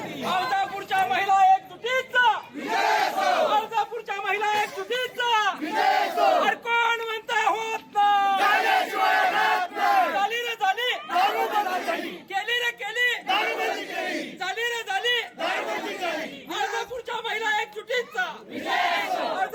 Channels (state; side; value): identical; both; correlation 1.00